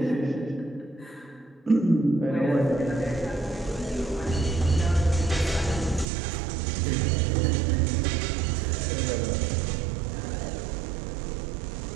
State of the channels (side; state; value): left; drops out; at 6.1 s